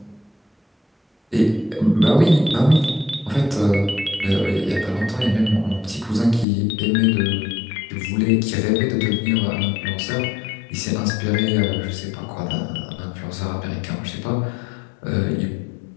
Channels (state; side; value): drops out; right; at 6.5 s